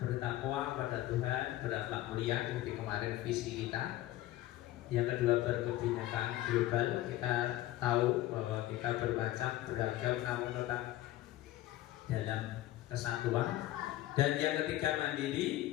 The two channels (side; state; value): right; quieter; 15.2 dB